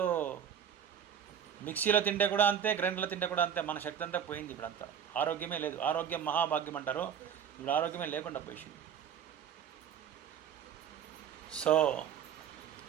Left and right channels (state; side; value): quieter; left; 8.6 dB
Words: మిక్సీలో తింటే కూడా అంతే, గ్రైండర్లో తింటే కూడా అంతే. మన శక్తి అంతా పోయింది. ఇప్పుడు అంతా ఆరోగ్యమే లేదు. ఆరోగ్యం మహాభాగ్యం అంటారు, ఇప్పుడు ఆరోగ్యమే లేకుండా పోయింది. సో